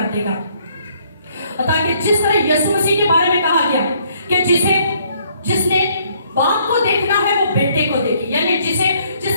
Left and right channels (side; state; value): both; inverted; correlation -0.65